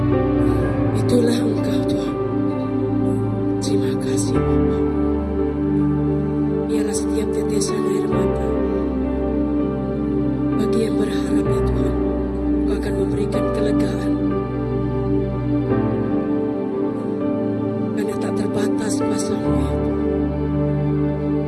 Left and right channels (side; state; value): both; identical; correlation 1.00